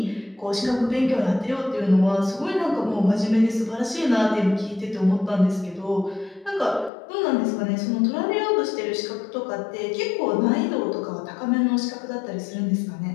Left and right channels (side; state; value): right; drops out; at 6.9 s